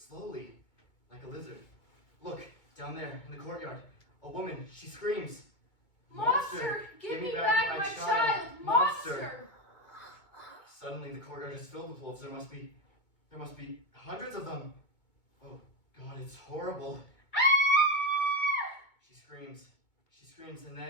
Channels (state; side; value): late; right; 2.2 ms